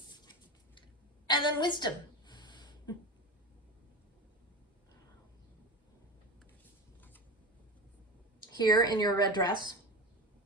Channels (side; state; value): both; normal; correlation 0.27